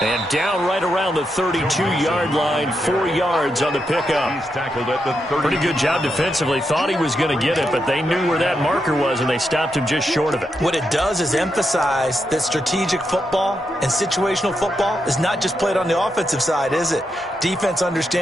And down right around the 32-yard line, 4 yards on the pickup. He's tackled at the 30. Pretty good job defensively. Thought he was going to get it, but they knew where that marker was, and they stopped him just short of it. What it does is emphasize that strategic football and situational football is not just played on the offensive side, is it? Defense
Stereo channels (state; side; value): normal; both; correlation 0.84